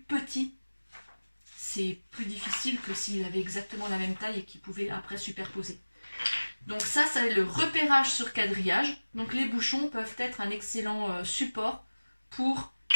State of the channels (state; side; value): inverted; both; correlation -1.00